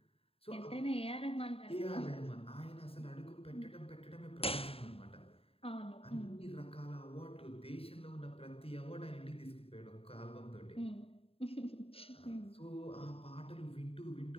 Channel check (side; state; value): right; late; 0.28 ms